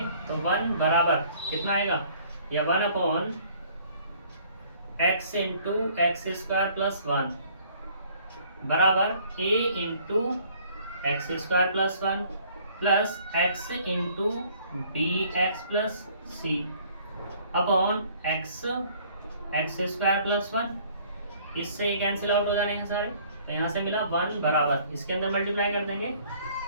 तो 1 बराबर कितना आएगा, या 1/x इंटू x² + 1 बराबर a into x² + 1 plus x into bx plus c upon x² + 1। इससे ये कैंसिल आउट हो जाने हैं सारे, तो यहाँ से मिला 1 बराबर, इसके अंदर मल्टीप्लाई कर देंगे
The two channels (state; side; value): inverted; both; correlation -0.58